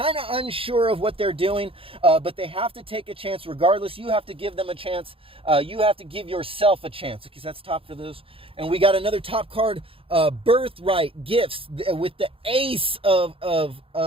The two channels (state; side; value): late; left; 0.27 ms